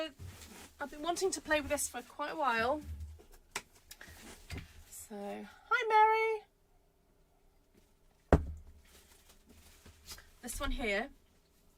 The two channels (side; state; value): both; identical; correlation 1.00